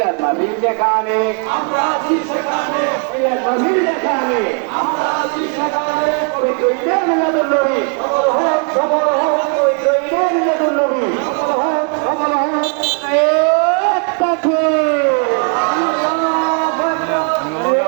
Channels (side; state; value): left; quieter; 37.9 dB